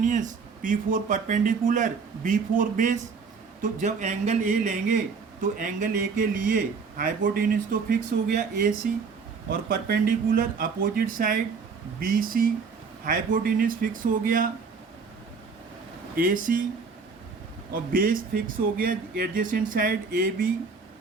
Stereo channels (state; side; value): quieter; left; 5.1 dB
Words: P4 perpendicular, B4 base. तो जब एंगल ए लेंगे तो एंगल ए के लिए हाइपोटेन्यूज तो फिक्स हो गया AC, और perpendicular opposite side BC, hypotenuse fix हो गया AC, और बेस फिक्स हो गया adjacent side AB।